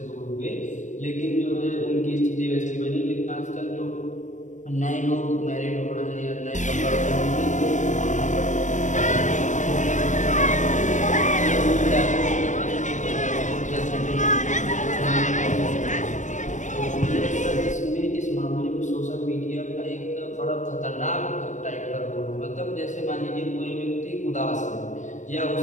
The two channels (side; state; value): right; late; 0.35 ms